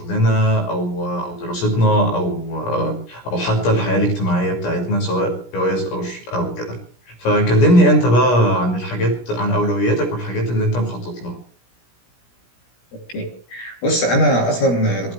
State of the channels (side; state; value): right; late; 17 ms